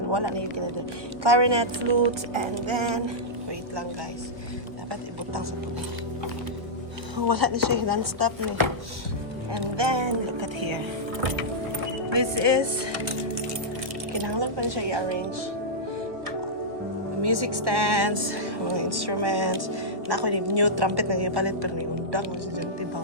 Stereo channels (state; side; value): late; left; 1.6 ms